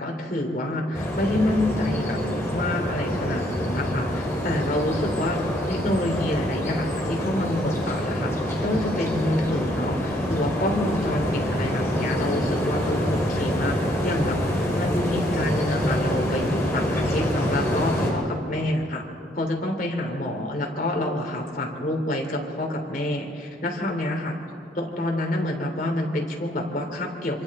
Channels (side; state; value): both; normal; correlation 0.67